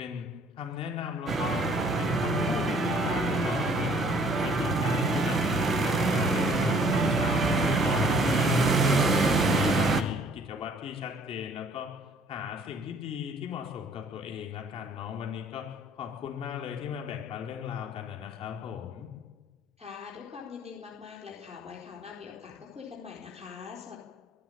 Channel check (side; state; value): both; normal; correlation 0.58